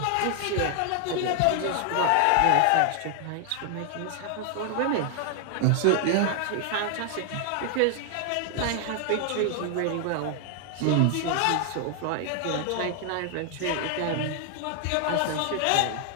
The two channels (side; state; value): both; different; correlation 0.00